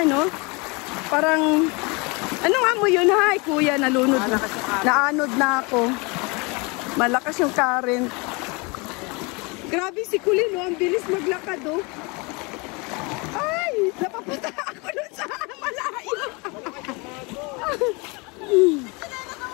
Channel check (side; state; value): right; quieter; 28.5 dB